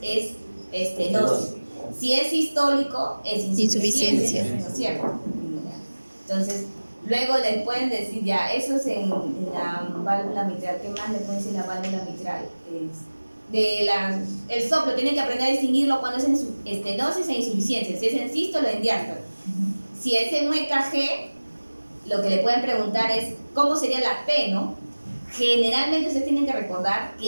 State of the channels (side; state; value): both; inverted; correlation -1.00